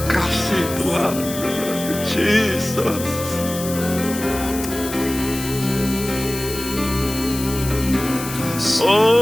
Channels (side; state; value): left; noise; hiss, 9 dB below the sound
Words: kasih Tuhan. Jesus.